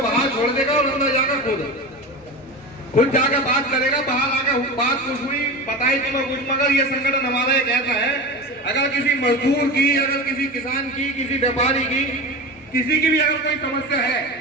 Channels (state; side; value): normal; both; correlation 0.27